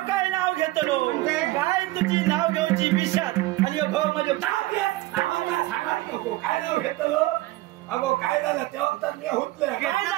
काय नाव घेतलो काय तुझी नाव घेऊची विषात आणि ह्यो भाऊ म्हणजे नावाला सांगत नको काय नाव घेतलो अगो काय झालं तेव्हा तर मी हुतले काय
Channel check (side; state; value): left; quieter; 18.6 dB